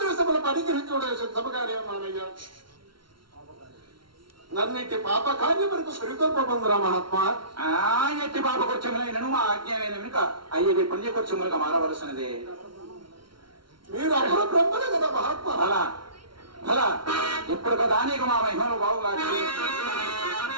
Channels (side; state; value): left; late; 0.73 ms